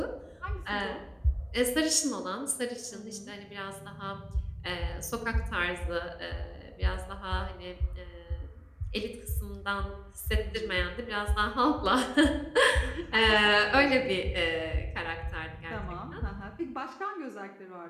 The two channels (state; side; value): identical; both; correlation 1.00